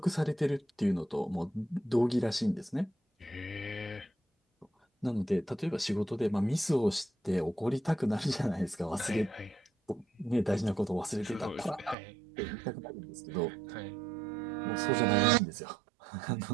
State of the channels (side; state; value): left; drops out; at 12.0 s